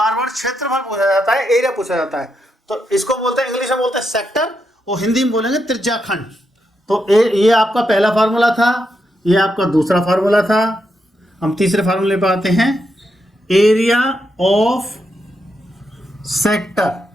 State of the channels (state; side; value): normal; both; correlation 0.83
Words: बार क्षेत्रफल पूछा जाता है, एरिया पूछा जाता है, तो इसको बोलते हैं, इंग्लिश में बोलते हैं सेक्टर, और हिंदी में बोलेंगे त्रिज्या खंड। तो ये आपका पहला फार्मूला था, ये आपका दूसरा फार्मूला था। हम तीसरे फार्मूले पर आते हैं, area of sector,